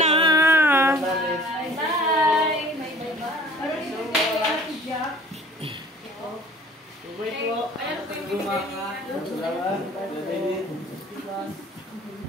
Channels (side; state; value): both; normal; correlation 0.50